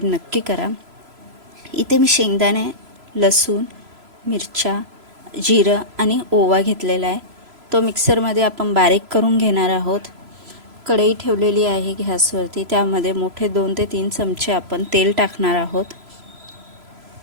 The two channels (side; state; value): left; late; 3.0 ms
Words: नक्की करा। इथे मी शेंगदाणे, लसूण, मिरच्या, जिरं आणि ओवा घेतलेला आहे। तो मिक्सरमध्ये आपण बारीक करून घेणार आहोत। कढई ठेवलेली आहे गॅसवरती, त्यामध्ये मोठे 2 ते 3 चमचे आपण तेल टाकणार आहोत।